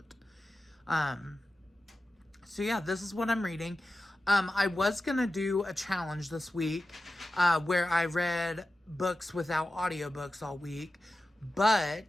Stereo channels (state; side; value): normal; both; correlation 0.93